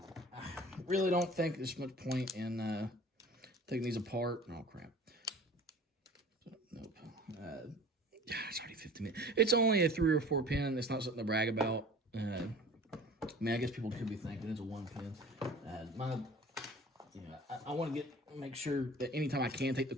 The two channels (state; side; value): normal; both; correlation 0.43